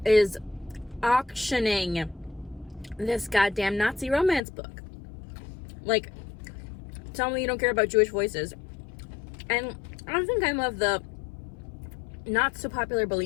is auctioning this goddamn Nazi romance book. Like, tell me you don't care about Jewish voices. And I don't think I'm of the not so popular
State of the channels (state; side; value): drops out; right; at 4.4 s